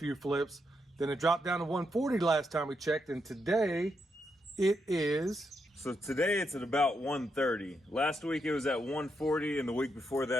flips, then it dropped down to 140 last time we checked, and today it is... so today it's at about 130. Last week it was at 140, and the week before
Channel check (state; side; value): normal; both; correlation 0.81